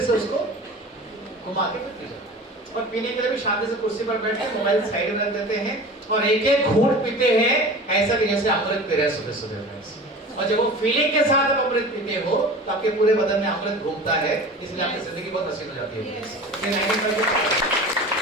से उसको घुमा के फिर पी जाते हैं। और पीने के लिए भी शांति से कुर्सी पर बैठ के मोबाइल साइड में रख देते हैं और एक एक घूंट पीते हैं, ऐसा कि जैसे अमृत पी रहे हैं सुबह सुबह। और जब वो फीलिंग के साथ आप अमृत पीते हो तो आपके पूरे बदन में अमृत घूमता है, इसलिए आपकी जिंदगी बहुत हसीन हो जाती है।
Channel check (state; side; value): normal; both; correlation 0.37